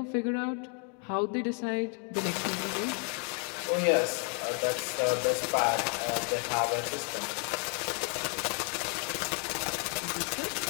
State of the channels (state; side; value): quieter; right; 39.2 dB